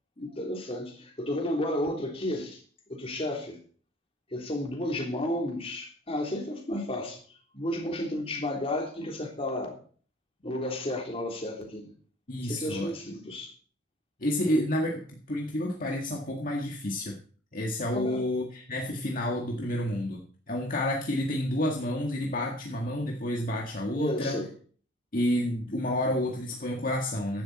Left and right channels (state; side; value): normal; both; correlation 0.52